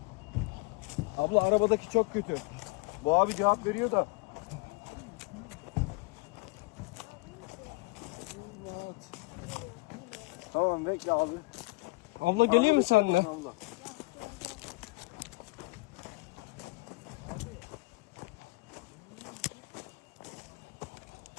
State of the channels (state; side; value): quieter; right; 24.5 dB